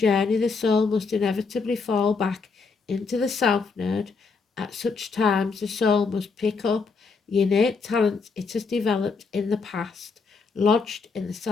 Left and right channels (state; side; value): quieter; right; 4.7 dB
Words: the soul must inevitably fall back into the South Node. At such times, the soul must pick up the innate talents it has developed in the past, lodged in the